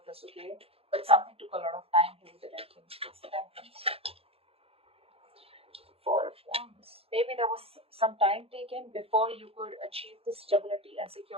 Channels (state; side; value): late; left; 0.28 ms